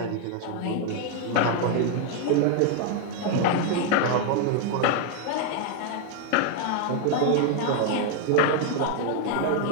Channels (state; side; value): different; both; correlation 0.00